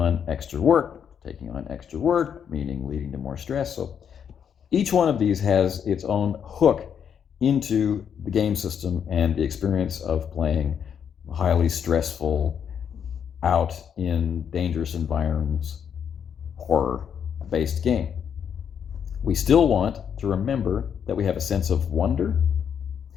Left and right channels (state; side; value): quieter; right; 7.9 dB